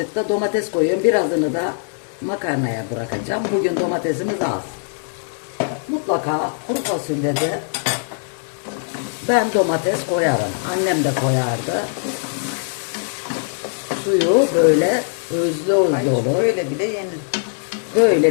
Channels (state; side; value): silent; right; digital silence